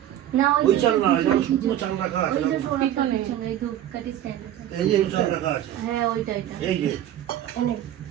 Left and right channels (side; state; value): left; quieter; 11.8 dB